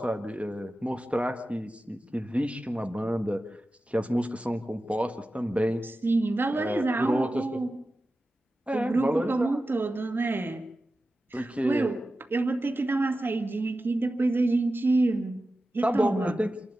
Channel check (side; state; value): both; normal; correlation 0.94